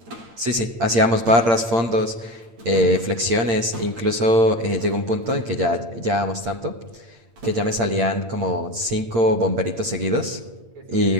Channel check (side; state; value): left; late; 8.8 ms